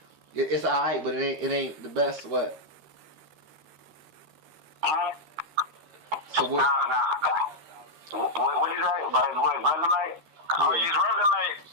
It's alright, but it ain't the best. What? So what? What is that? About his what? Resume? Oh, his resume.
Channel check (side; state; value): left; late; 13 ms